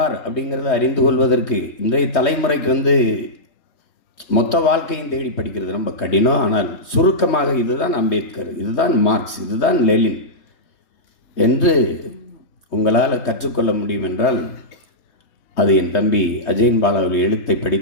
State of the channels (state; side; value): late; right; 3.2 ms